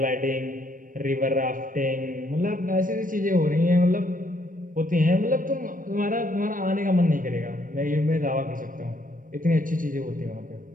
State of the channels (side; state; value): left; late; 0.39 ms